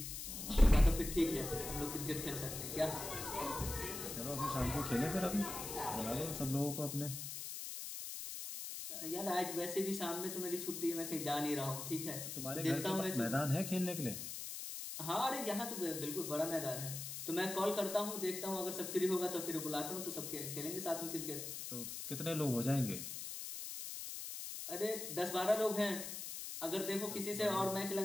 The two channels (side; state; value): left; noise; hiss, 6 dB below the sound